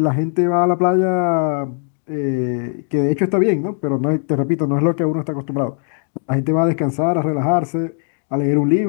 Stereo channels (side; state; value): right; silent; 59 dB below the other